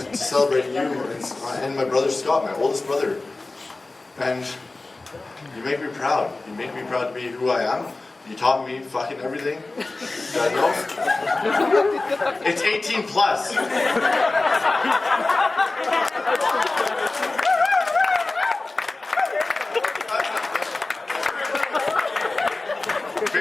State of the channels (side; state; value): right; quieter; 3.2 dB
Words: celebrate you and my brother Scott, my oldest brother. And you make me proud. You make me proud to be who I am. You taught me fucking everything that I know. It's 18 plus.